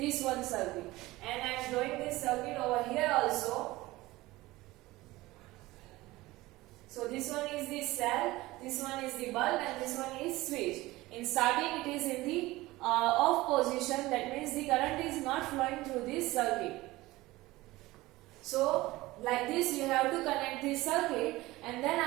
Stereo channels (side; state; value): left; quieter; 19.1 dB